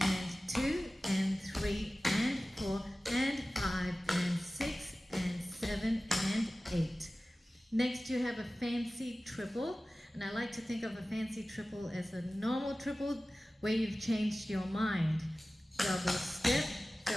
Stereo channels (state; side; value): normal; both; correlation 0.97